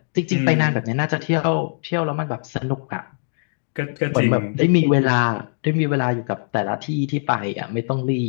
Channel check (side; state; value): right; silent; digital silence